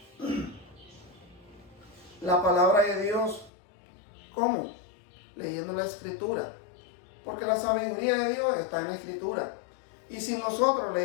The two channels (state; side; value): drops out; right; at 3.5 s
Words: la palabra de Dios. ¿Cómo? Leyendo la Escritura, porque la sabiduría de Dios está en la Escritura. Y si nosotros